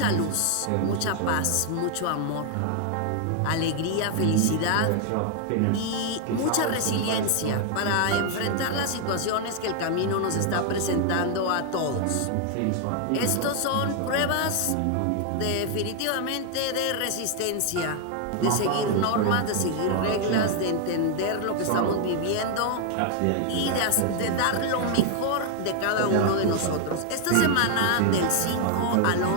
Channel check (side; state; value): both; different; correlation 0.00